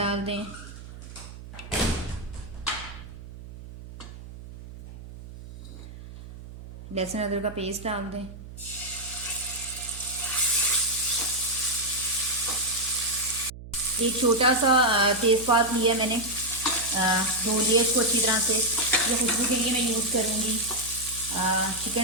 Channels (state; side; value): noise; right; hum, 14 dB below the sound